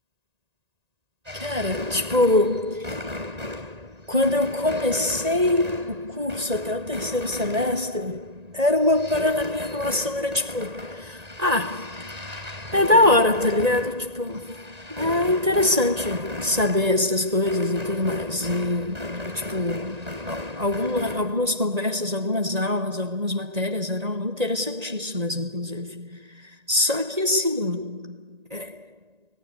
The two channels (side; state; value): left; late; 1.9 ms